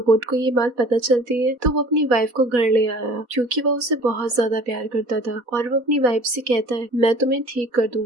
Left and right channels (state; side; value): late; left; 4.1 ms